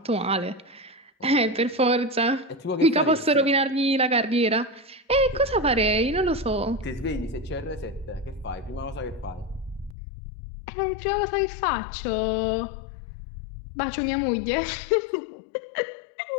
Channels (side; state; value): right; drops out; at 10.0 s